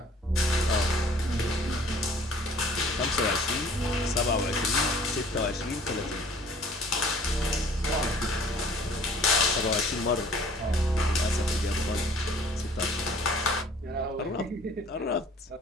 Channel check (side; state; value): both; normal; correlation 0.53